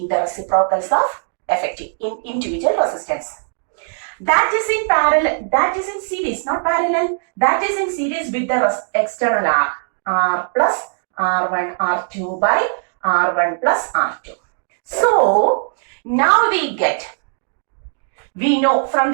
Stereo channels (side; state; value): left; silent; digital silence